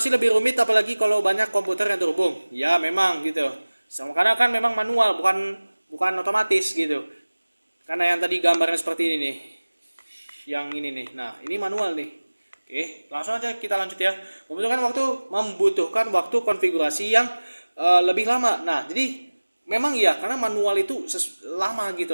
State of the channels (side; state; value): both; inverted; correlation -1.00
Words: lebih rumit apalagi kalau banyak komputer yang terhubung. Ya, memang gitu. Karena kan memang manual, bukan otomatis gitu. Karena yang tadi gambarnya seperti ini nih. Yang ini nih. Nah, ini manual nih. Oke, langsung aja kita lanjut ya. Membutuhkan waktu konfigurasi yang lebih lama. Nah, jadi memang iya karena manual itu lama